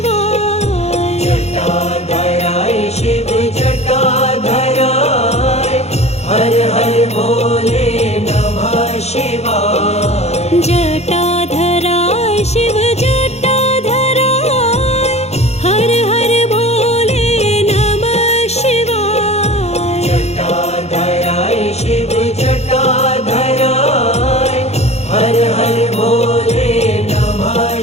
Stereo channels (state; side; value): late; right; 0.31 ms